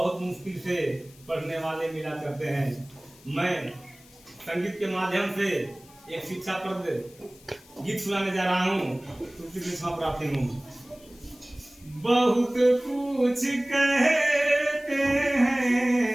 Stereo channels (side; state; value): left; noise; hiss, 25 dB below the sound